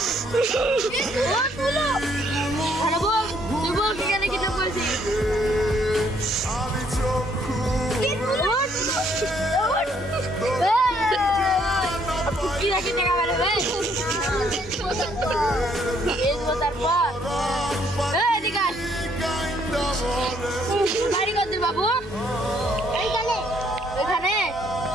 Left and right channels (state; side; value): normal; both; correlation 0.67